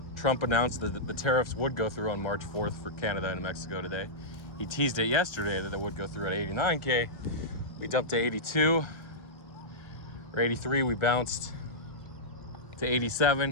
Trump announced that the tariffs would go through on March 4th for Canada and Mexico today. He teased it yesterday that it would go through at 89K. We dumped to 82 or 83. We bounced to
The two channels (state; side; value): late; right; 1.3 ms